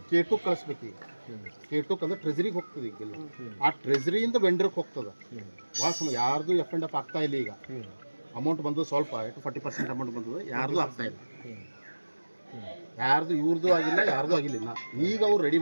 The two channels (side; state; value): both; inverted; correlation -1.00